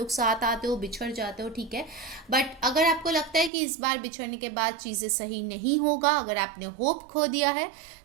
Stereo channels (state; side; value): drops out; left; at 3.5 s